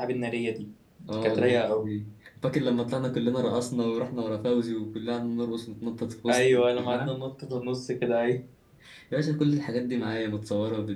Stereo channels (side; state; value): both; identical; correlation 1.00